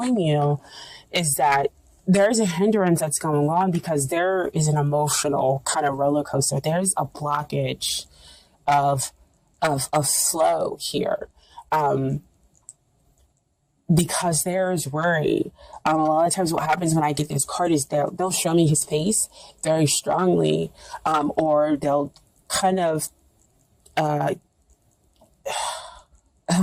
you is that there's a hindrance that's going on because there is an emotional kind of roller coaster. There's a blockage of flow here. Because there is worry. A lot of times what happens when I get this card is they'll show me his face very strongly, or they'll kind of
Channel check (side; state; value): both; identical; correlation 1.00